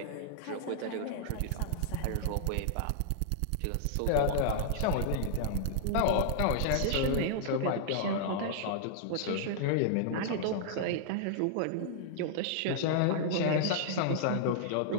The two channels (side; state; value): both; different; correlation -0.01